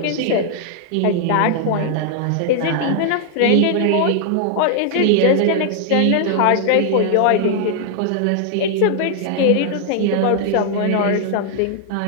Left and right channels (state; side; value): different; both; correlation 0.00